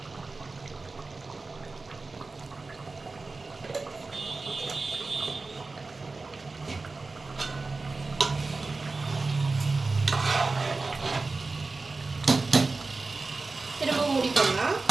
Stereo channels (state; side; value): quieter; left; 3.7 dB